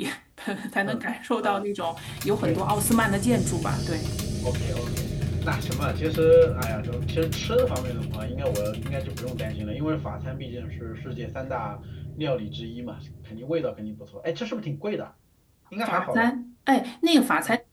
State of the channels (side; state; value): both; identical; correlation 1.00